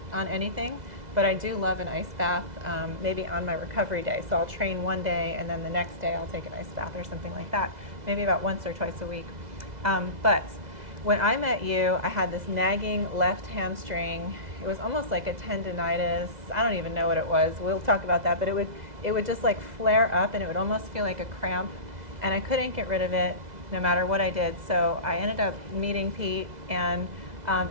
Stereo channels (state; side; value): late; left; 2.0 ms